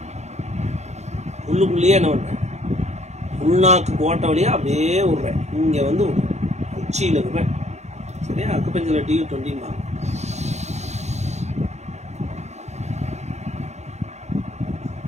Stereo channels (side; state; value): left; late; 0.33 ms